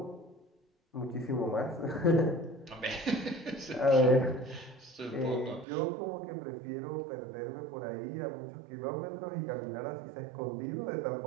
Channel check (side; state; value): left; drops out; at 5.7 s